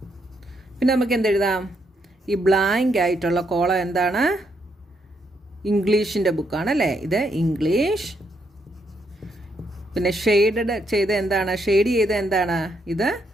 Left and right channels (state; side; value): normal; both; correlation 0.76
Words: പിന്നെ നമുക്ക് എന്തെഴുതാം? ഈ ബ്ലാങ്ക് ആയിട്ടുള്ള കോളം എന്താണ്? ഇംഗ്ലീഷിൻ്റെ ബുക്കാണല്ലേ. ഇത് ഇംഗ്ലീഷ്. പിന്നെ ഷെയ്ഡ് ചെയ്ത എന്താണ്? ഷെയ്ഡ് ചെയ്ത എന്താണ്? ഇത്